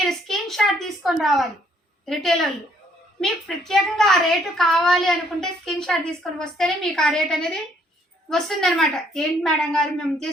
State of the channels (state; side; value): normal; both; correlation 0.66